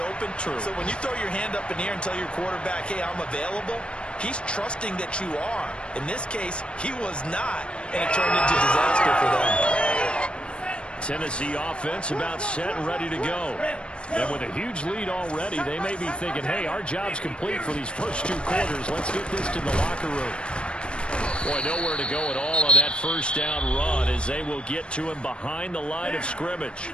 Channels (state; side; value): late; right; 0.056 ms